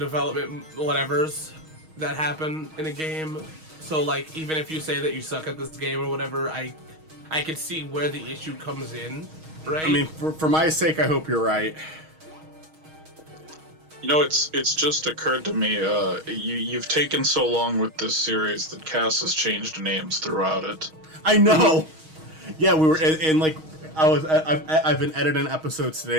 whatevers that happen in a game. So like even if you say that you suck at this game or whatever, I could see where the issue comes in, right? I mean, for my sake, I hope you're right. You know, it's just occurred to me, you've taken so long with this series that Cass has changed names throughout it. I know! Yeah, we were, and like, I've been editing episodes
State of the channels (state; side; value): late; left; 6.3 ms